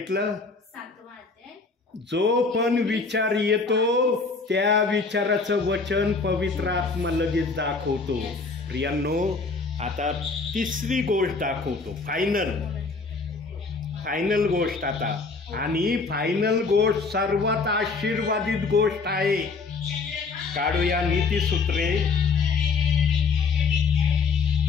7वा अध्याय. जो पण विचार येतो त्या विचाराचं वचन पवित्र आत्मा लगेच दाखवतो. प्रियांनो, आता तिसरी गोष्ट दाखवतो, फायनल गोष्ट आता. आणि फायनल गोष्ट सर्वात आशीर्वादित गोष्ट आहे. काढूया नीतिसूत्रे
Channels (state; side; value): quieter; right; 4.4 dB